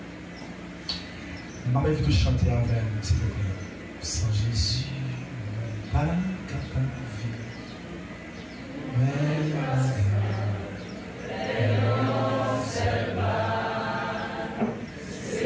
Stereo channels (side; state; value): both; identical; correlation 1.00